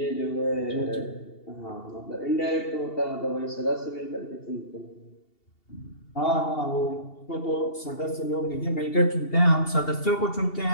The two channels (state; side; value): late; right; 2.7 ms